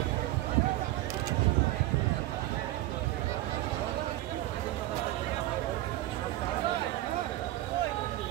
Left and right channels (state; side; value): quieter; left; 16.4 dB